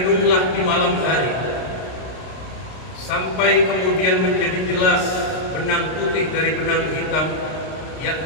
di malam hari sampai kemudian menjadi jelas benang putih dari benang hitam,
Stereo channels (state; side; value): late; right; 32 ms